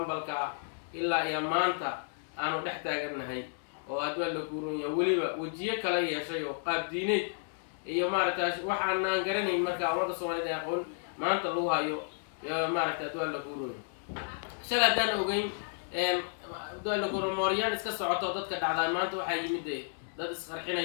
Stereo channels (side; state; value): right; silent; 56 dB below the other